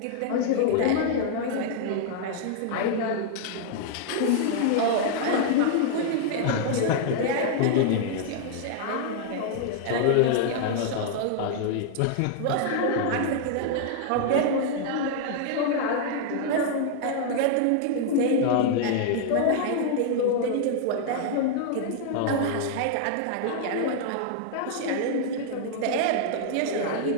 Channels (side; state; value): both; different; correlation -0.01